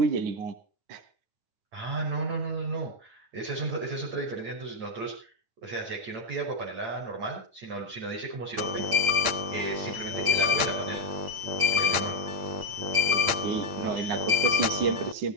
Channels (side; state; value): left; late; 8.8 ms